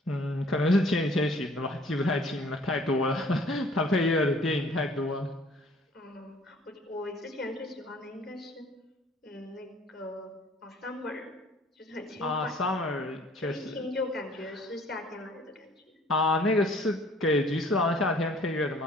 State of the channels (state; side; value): normal; both; correlation 0.55